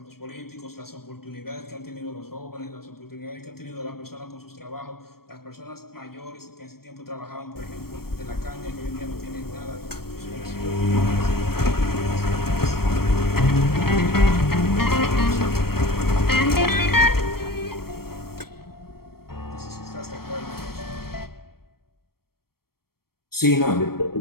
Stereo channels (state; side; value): late; right; 0.94 ms